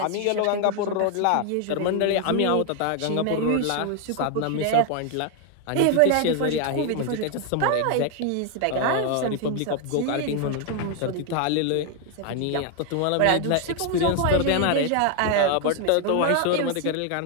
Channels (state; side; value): different; both; correlation 0.01